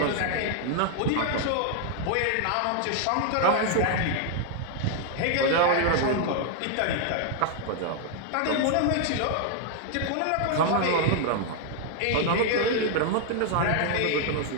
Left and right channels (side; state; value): both; different; correlation 0.00